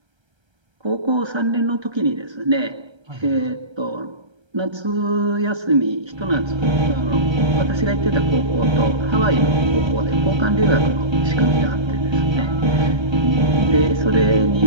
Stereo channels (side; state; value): left; late; 1.3 ms